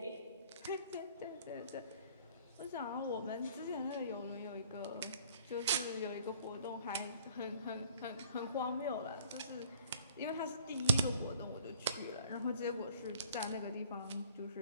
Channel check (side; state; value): both; inverted; correlation -0.56